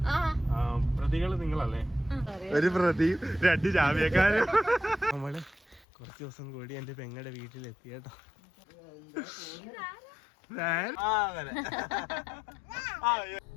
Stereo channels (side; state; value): right; drops out; at 5.9 s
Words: പ്രതികള് നിങ്ങളല്ലേ? ഒരു പ്രതി, 2 ജാമ്യക്കാരും. നമ്മള് കുറച്ച് ദിവസം കൂടി എന്റെ പെങ്ങളുടെ വീട്ടിലെത്തി കേട്ടോ.